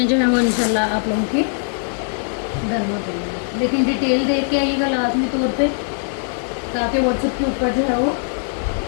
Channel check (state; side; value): silent; right; digital silence